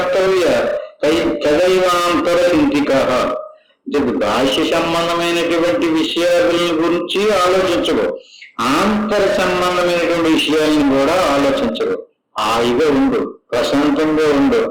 తదైవాంతర చింతిక. బాహ్య సంబంధమైనటువంటి విషయాల గురించి ఆలోచించవు, ఆంతర సంబంధమైనటువంటి విషయాలను కూడా ఆలోచించవు. హాయిగా ఉండు, ప్రశాంతంగా ఉండు,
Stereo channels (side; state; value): both; identical; correlation 1.00